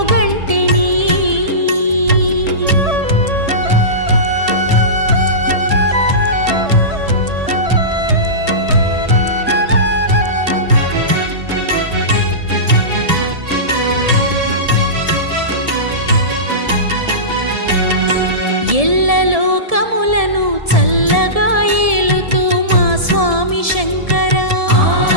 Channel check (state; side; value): late; left; 1.7 ms